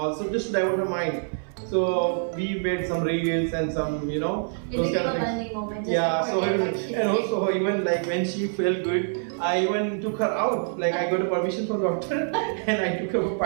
so just to divert her mind. So we made some reels and some, those kind of things. Moment, Yeah. So and also even like when she felt good, I even took her out. Like I got a permission from doctor and I took her for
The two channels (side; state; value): left; silent; 57 dB below the other